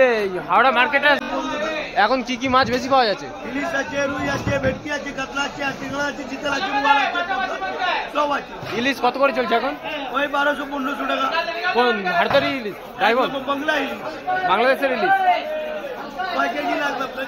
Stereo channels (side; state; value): both; identical; correlation 1.00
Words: হাওড়া মার্কেটে এখন কি কি মাছ বেশি পাওয়া যাচ্ছে? ইলিশ আছে, রুই আছে, ভেটকি আছে, কাতলা আছে, চিংড়া আছে, চিতল আছে, বোয়াল আছে, সব আছে। ইলিশ কত করে চলছে এখন? ওই 1200-1500 টাকা। কোন ভারতের ইলিশ? ড্রাইভার বাংলা ইলিশ, বাংলাদেশের ইলিশ। কয় কেজি লাগবে